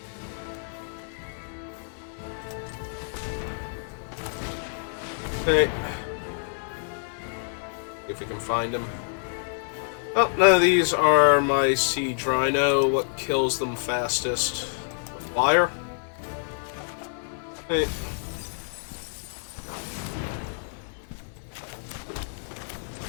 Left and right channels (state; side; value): silent; right; 60 dB below the other